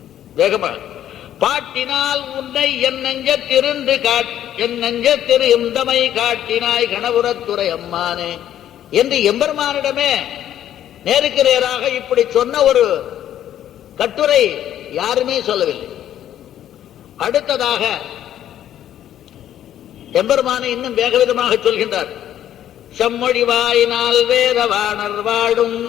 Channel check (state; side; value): quieter; right; 11.3 dB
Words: வேகமா பாட்டினால் உன்னை என் நெஞ்சத்திருந்து என் நெஞ்சத்திரு இந்தமை காட்டினாய் கணபுரத்துறை அம்மானே என்று எம்பெருமானிடமே நேருக்கு நேராக இப்படி சொன்ன ஒரு கட்டுரை யாருமே சொல்லவில்லை. அடுத்ததாக எம்பெருமானை இன்னும் வேகவிதமாக சொல்கின்றார். செம்மொழிவாயினால் வேதவாணர் வாழும்